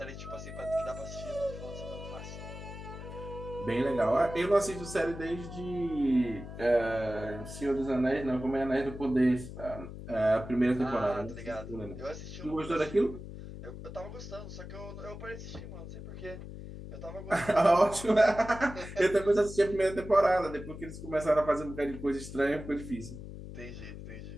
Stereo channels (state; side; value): noise; left; hum, 11 dB below the sound